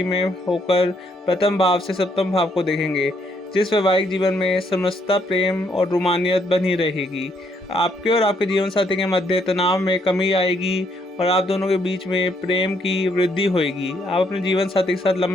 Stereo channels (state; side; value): normal; both; correlation 0.72